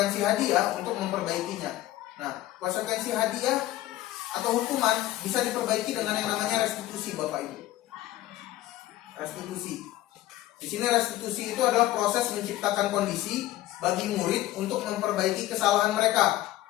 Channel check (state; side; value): quieter; right; 15.4 dB